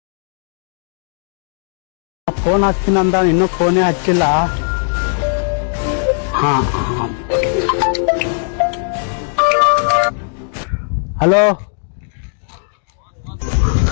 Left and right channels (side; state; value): right; silent; digital silence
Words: ಫೋನ್ ಹಚ್ತೀನಂದ ಇನ್ನೂ ಫೋನೇ ಹಚ್ಚಿಲ್ಲ. ಹಾ ಹಲೋ,